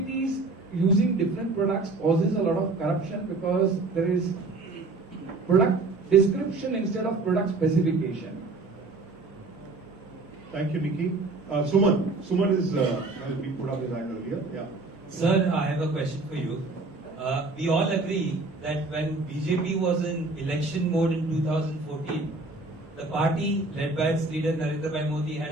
using different products causes a lot of corruption, because there is product description instead of product specification. Thank you, Nikki. Suman. Suman has been put up his hand earlier. Yeah. Sir, I have a question for you. We all agree that when BJP was in election mode in 2014, the party led by its leader Narendra Bhai Modi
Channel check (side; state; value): left; quieter; 3.4 dB